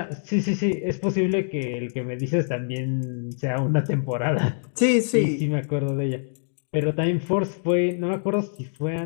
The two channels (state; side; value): silent; right; digital silence